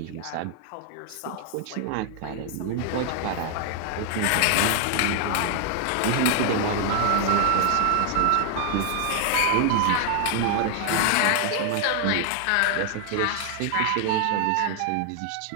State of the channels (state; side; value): different; both; correlation 0.00